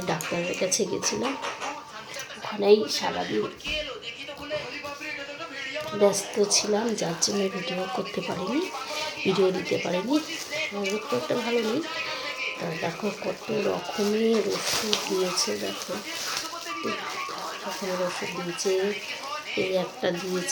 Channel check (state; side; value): identical; both; correlation 1.00